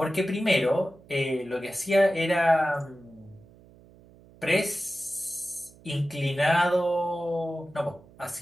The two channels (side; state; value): right; noise; hum, 25 dB below the sound